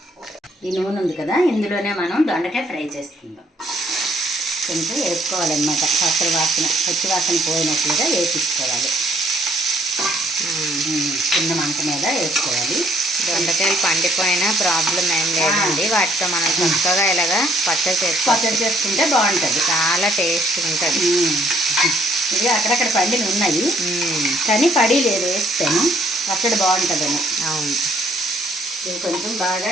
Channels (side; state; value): both; normal; correlation 0.65